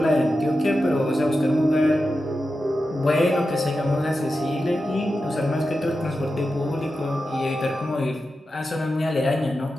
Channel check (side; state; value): both; normal; correlation 0.91